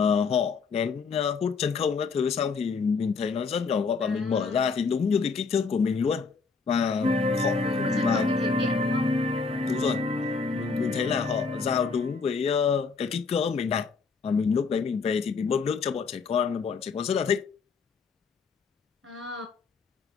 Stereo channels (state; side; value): quieter; right; 4.8 dB